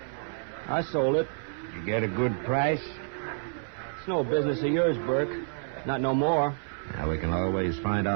I sold it. You get a good price? It's no business of yours, Burke. Not no more. Now, we can always find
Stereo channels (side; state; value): left; silent; 59 dB below the other